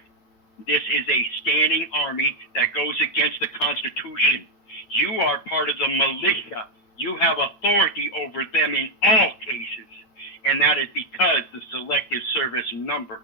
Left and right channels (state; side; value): late; right; 9.1 ms